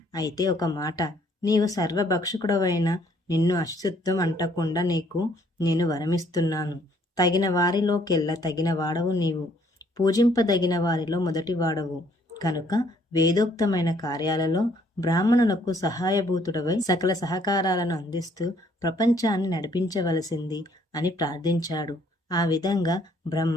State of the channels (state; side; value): normal; both; correlation 0.64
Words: అయితే ఒక మాట, నీవు సర్వభక్షకుడవైన నిన్ను అశుద్ధం అంటకుండా నీకు నేను వరమిస్తున్నాను. తగిన వారిలోకెల్లా తగిన వాడవు నీవు. పూజింపదగిన వారిలో మొదటి వాడవు కనుక వేదోక్తమైన కార్యాలలో బ్రాహ్మణులకు సహాయభూతుడవై సకల సహకారాలను అందిస్తూ ప్రపంచాన్ని నడిపించవలసింది అని ప్రార్థించాడు. ఆ విధంగా